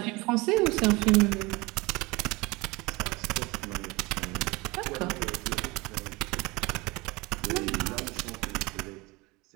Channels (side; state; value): left; quieter; 24.0 dB